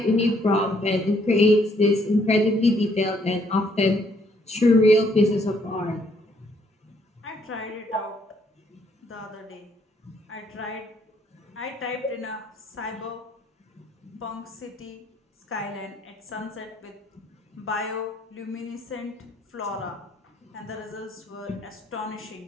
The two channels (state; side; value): normal; both; correlation 0.68